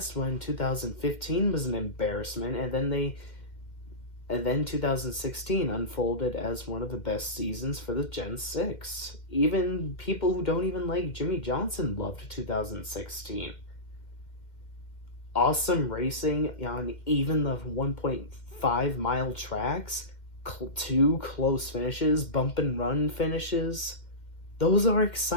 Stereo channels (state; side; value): late; right; 2.1 ms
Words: when 2015 was an embarrassment, and then 2016 unfolded as one of the best seasons for the Gen 6. Even people who don't even like Jimmy Johnson loved 2016. Awesome racing on even the 1.5-mile tracks, 2 close finishes, bump and run finishes. Those are